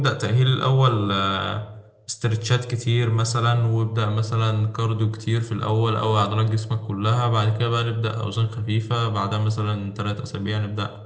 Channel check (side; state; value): both; identical; correlation 1.00